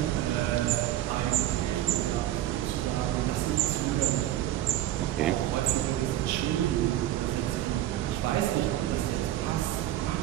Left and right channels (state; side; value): quieter; left; 13.5 dB